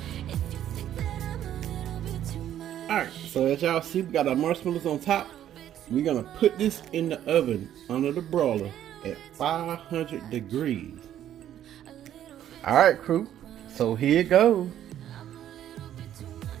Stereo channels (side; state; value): left; quieter; 11.1 dB